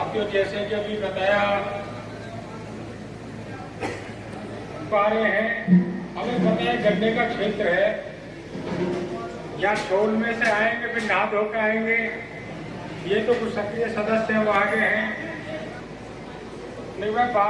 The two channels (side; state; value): both; identical; correlation 1.00